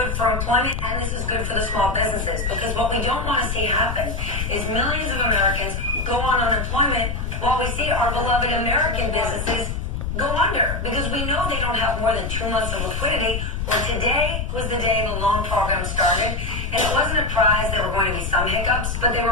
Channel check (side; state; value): left; noise; rumble, 3 dB below the sound